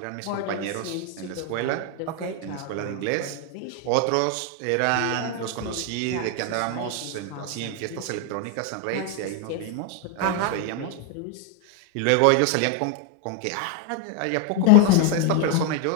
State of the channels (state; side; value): different; both; correlation 0.01